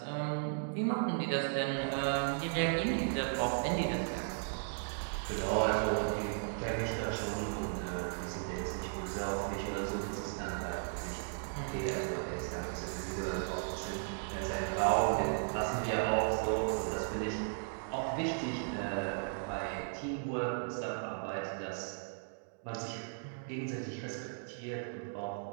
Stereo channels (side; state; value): left; silent; digital silence